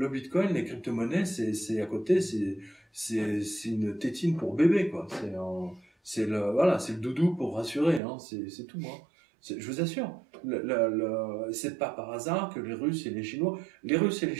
Bitcoin, les crypto-monnaies, c'est à côté, c'est une tétine pour bébé, quoi. C'est le doudou pour rassurer, hein. C'est tout, hein. Je vous assure. C'est pas par hasard que les Russes et les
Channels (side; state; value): left; drops out; at 8.0 s